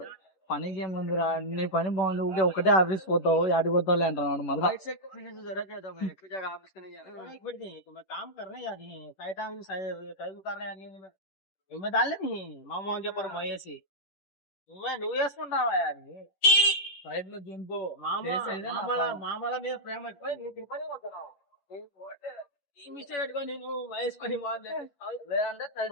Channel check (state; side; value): late; right; 11 ms